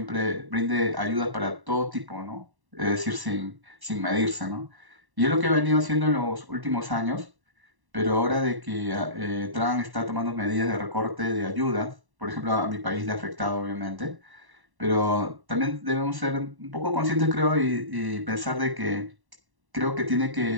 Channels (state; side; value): late; left; 1.1 ms